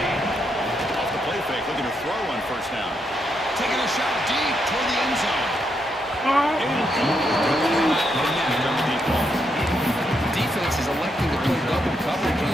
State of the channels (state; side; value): normal; both; correlation 0.79